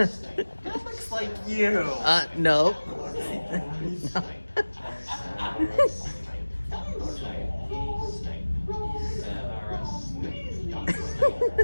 looks like you. No.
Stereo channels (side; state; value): both; inverted; correlation -1.00